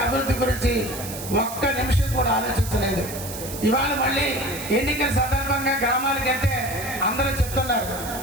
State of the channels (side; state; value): right; noise; hiss, 10 dB below the sound